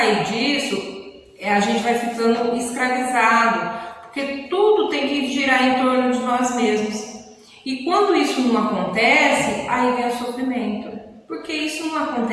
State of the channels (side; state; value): both; identical; correlation 1.00